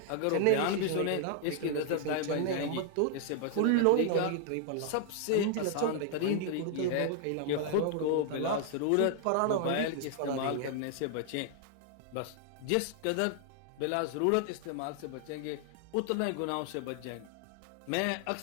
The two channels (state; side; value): different; both; correlation 0.00